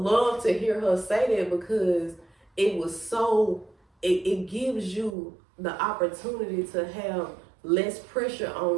to hear her say that, because it was so, it gives you the opportunity to have less pressure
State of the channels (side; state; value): left; drops out; at 5.2 s